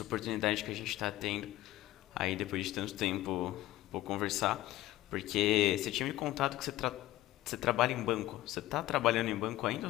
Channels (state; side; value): quieter; right; 15.9 dB